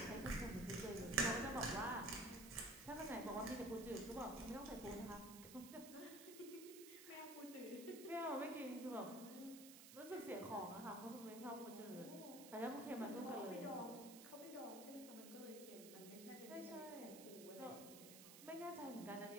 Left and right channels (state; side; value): noise; right; hiss, 12 dB below the sound